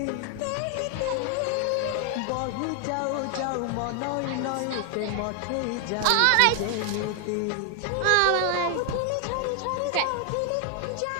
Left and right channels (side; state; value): both; different; correlation 0.01